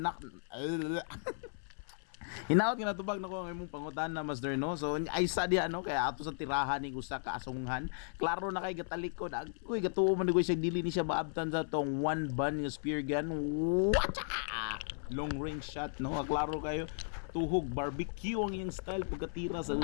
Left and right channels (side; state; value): right; silent; 54 dB below the other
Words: Hinaot nga natubag na ko ang imong pangutan na master no. So ay sa di ano kaya ato sa tirahan ni usa ka asunghan. Klaro na kay gatalikod. Uy gatuo man ko siya dili ni siya maabtan sa tong one bun nga spear gun. Wacha! Long range shot no. Klaro kayo tuhog barbecue ang iyang style pagkatira sa